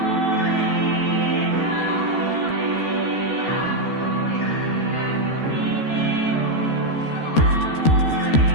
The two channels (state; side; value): late; right; 13 ms